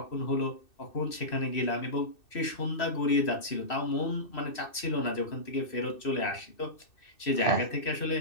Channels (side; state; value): right; late; 2.6 ms